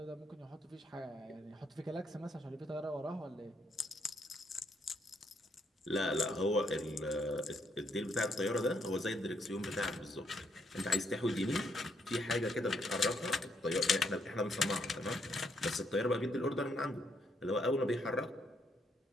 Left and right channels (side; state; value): both; normal; correlation 0.74